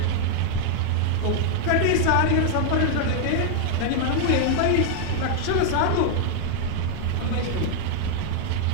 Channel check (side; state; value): both; different; correlation 0.00